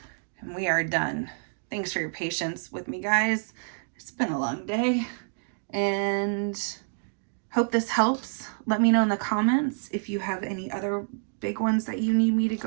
And we are done. Thanks for your patience with me, guys. It's been a long day. And hope this helps. Let me know in the comments if you have any other big ones that you need me to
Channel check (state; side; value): silent; left; digital silence